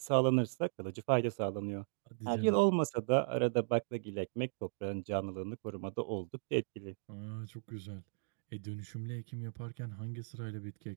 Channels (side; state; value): left; silent; digital silence